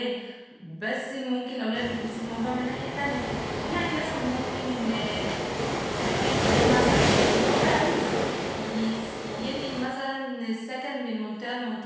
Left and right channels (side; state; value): both; identical; correlation 1.00